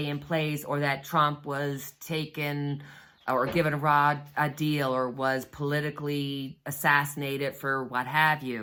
in place, or that Trump was taken or given a deal, or was politically assassinated for what have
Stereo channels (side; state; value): both; identical; correlation 1.00